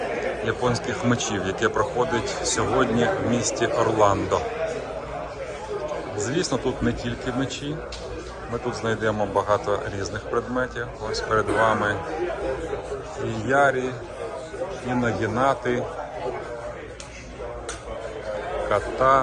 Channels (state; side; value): identical; both; correlation 1.00